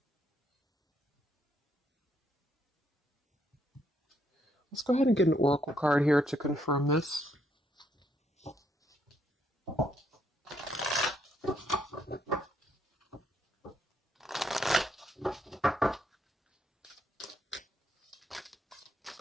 let's go ahead and get an oracle card here to confirm this.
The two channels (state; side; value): normal; both; correlation 0.74